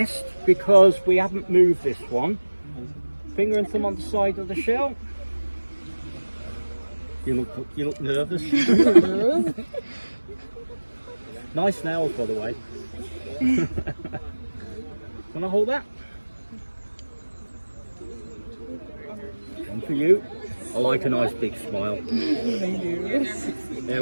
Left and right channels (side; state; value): both; inverted; correlation -1.00